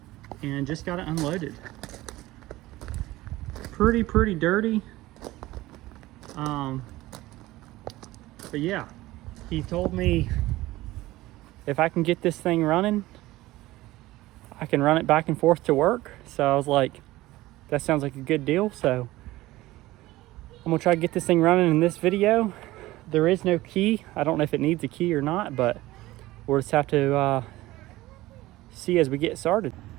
and just got it unloaded. Pretty dirty. But yeah, he told me if I can get this thing running, I can run it back and forth to work. So I was like, that sounds like a good deal. So I'm gonna try to get this thing running in this video. There is no key. I don't know if it needs a key or not, but we'll just have to see as we get started.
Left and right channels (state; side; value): quieter; left; 17.8 dB